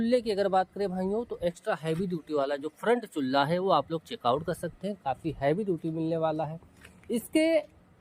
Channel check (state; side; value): identical; both; correlation 1.00